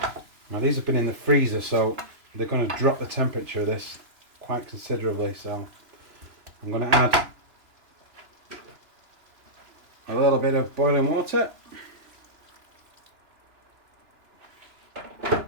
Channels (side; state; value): left; late; 3.0 ms